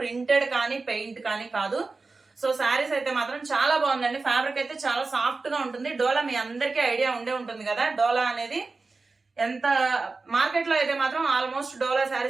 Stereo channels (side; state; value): left; quieter; 3.9 dB